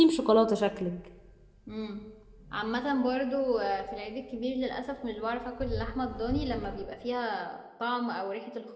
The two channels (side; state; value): both; identical; correlation 1.00